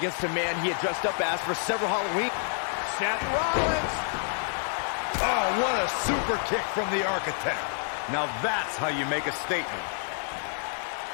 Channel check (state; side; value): silent; right; 59 dB below the other